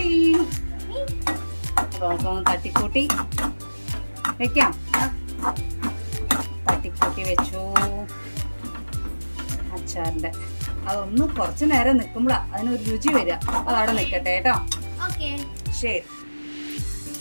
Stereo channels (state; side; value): inverted; both; correlation -1.00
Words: തട്ടിക്കൂട്ടി വെക്കാം. തട്ടിക്കൂട്ടി വെച്ചു അച്ചാറിന്റെ. അതൊന്ന് കുറച്ചു നേരം നിൽക്കുമ്പോഴാ അതിനൊരു രുചി വരിക. അതവിടെ നിൽക്കട്ടെ കേട്ടോ. ശരി.